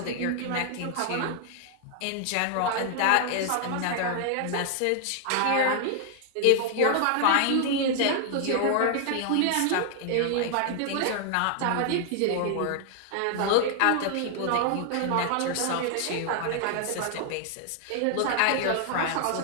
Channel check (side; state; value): both; different; correlation 0.00